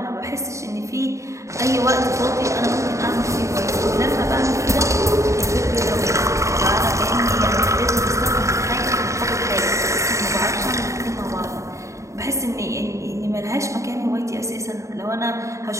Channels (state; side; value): late; left; 0.15 ms